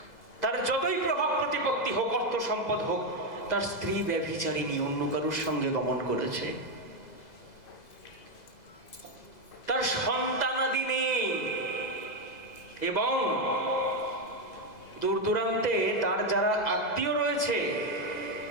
তার যতই প্রভাব প্রতিপত্তি হোক, অর্থ সম্পদ হোক, তার স্ত্রী ব্যভিচারিণী, অন্য কারোর সঙ্গে গমন করেছে, তার সন্তানাদি নেই, এবং দূর দূরান্তে তার যারা আত্মীয় রয়েছে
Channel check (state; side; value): late; right; 2.0 ms